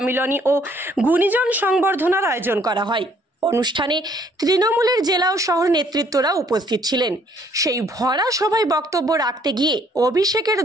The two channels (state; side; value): normal; both; correlation 0.63